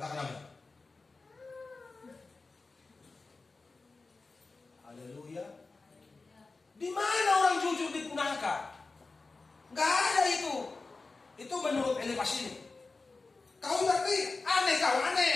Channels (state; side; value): quieter; right; 3.8 dB